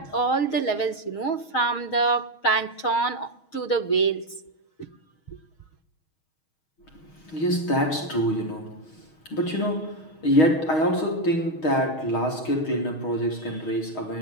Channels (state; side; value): late; right; 6.3 ms